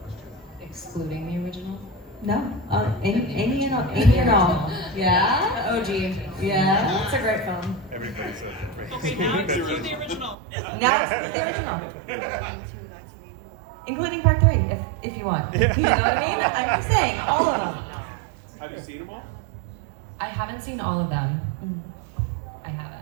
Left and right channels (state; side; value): drops out; left; at 10.4 s